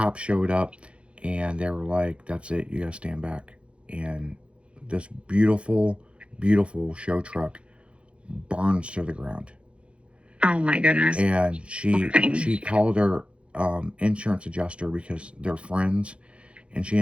showed up, and they were like, that's it, you gotta stand back. And this beautiful, beautiful show truck burns to the ground. Oh my goodness. And she called her insurance adjuster, because they're friends, and she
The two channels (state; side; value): late; left; 0.060 ms